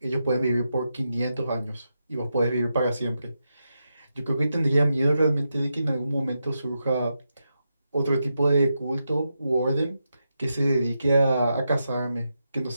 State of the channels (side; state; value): both; inverted; correlation -0.86